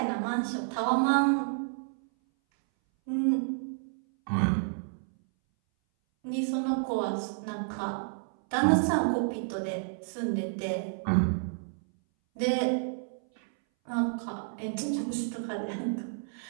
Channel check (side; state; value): left; silent; 58 dB below the other